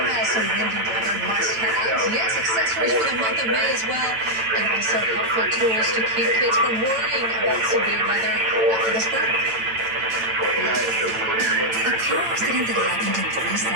has some windy weather must-haves? Yes, accessories for the month of May as well. And also helpful tools to keep kids from worrying about severe weather after this break. A car accident that happened in 3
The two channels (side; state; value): left; late; 9.0 ms